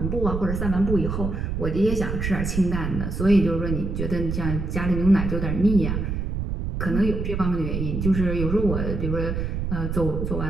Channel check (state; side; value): noise; right; rumble, 2 dB below the sound